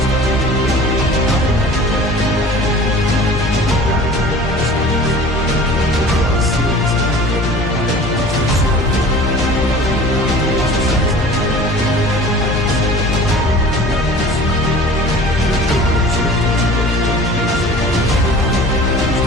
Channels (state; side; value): normal; both; correlation 0.43